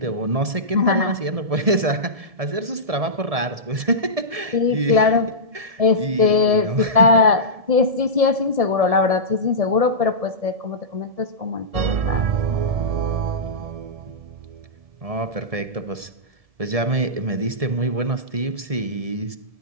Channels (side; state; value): left; late; 1.7 ms